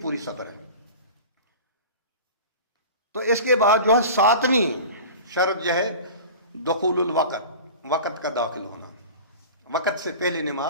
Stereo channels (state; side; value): inverted; both; correlation -0.36